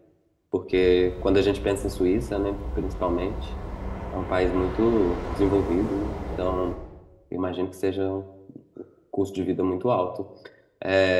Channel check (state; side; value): identical; both; correlation 1.00